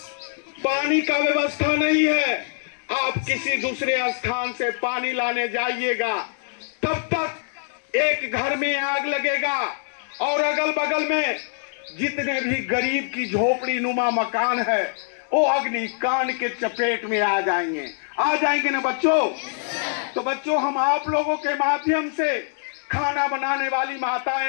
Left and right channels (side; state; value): right; silent; 61 dB below the other